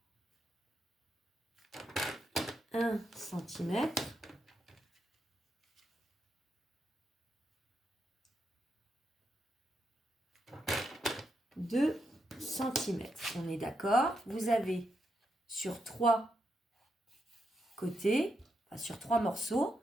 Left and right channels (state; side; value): normal; both; correlation 0.82